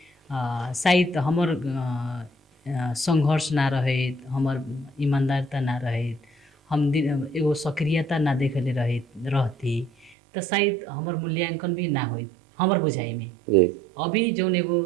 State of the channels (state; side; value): drops out; left; at 10.2 s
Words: शायद हमर संघर्ष ना रहे, हमर ईमानदारता ना रहे, हम एगो सक्रियता ना देखले रहती तो शायद हमर मूल्यांकन भी ना होइत हमर बुझाई में। अभी जौन एगो